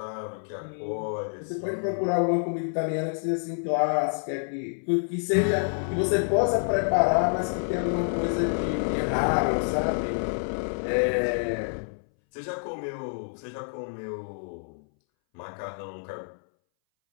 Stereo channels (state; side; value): silent; right; 60 dB below the other